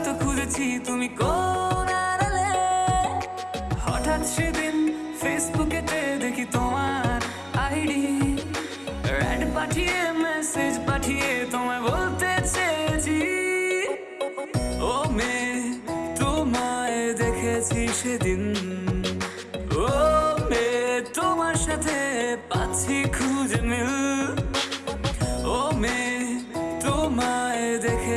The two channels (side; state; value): both; identical; correlation 1.00